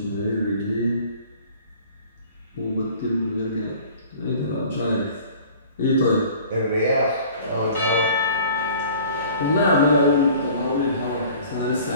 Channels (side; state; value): both; inverted; correlation -0.48